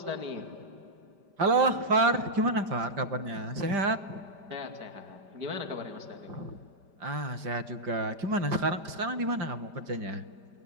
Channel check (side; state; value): left; late; 5.1 ms